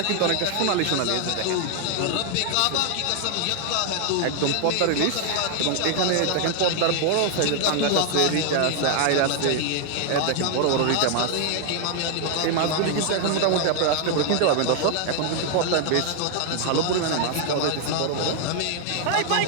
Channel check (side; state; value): both; different; correlation 0.00